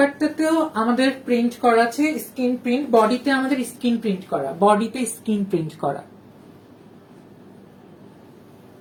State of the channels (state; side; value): identical; both; correlation 1.00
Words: আমাদের প্রিন্ট করা আছে স্ক্রিন প্রিন্ট, বডিতে আমাদের স্ক্রিন প্রিন্ট করা, বডিতে স্ক্রিন প্রিন্ট করা।